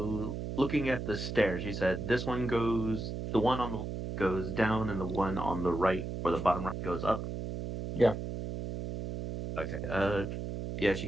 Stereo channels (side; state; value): right; noise; hum, 5 dB below the sound